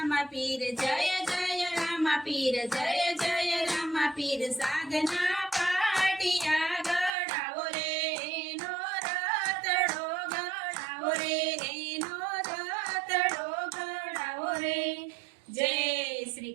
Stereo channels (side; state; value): left; drops out; at 7.1 s